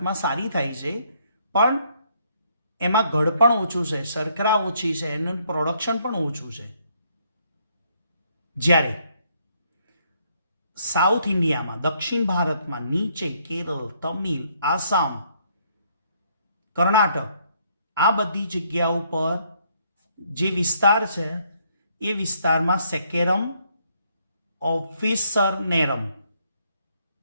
સારી થાય છે, પણ એમાં ગળપણ ઓછું છે, શર્કરા ઓછી છે, એનું પ્રોડક્શન પણ ઓછું છે. જ્યારે સાઉથ ઇન્ડિયામાં, દક્ષિણ ભારતમાં નીચે કેરળ, તમિલ, આસામ, કર્ણાટક આ બધી જગ્યાઓ પર જે વિસ્તાર છે એ વિસ્તારમાં સેકેરમ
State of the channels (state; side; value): inverted; both; correlation -0.69